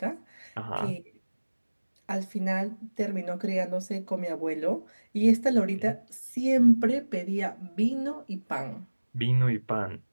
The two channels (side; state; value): both; inverted; correlation -1.00